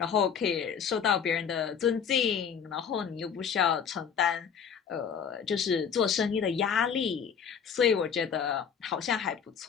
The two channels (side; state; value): right; quieter; 7.2 dB